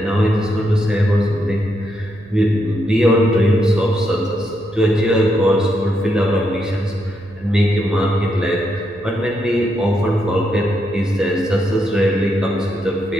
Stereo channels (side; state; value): right; noise; hum, 25 dB below the sound